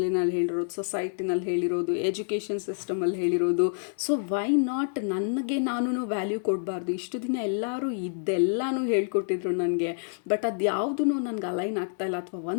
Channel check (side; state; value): right; silent; digital silence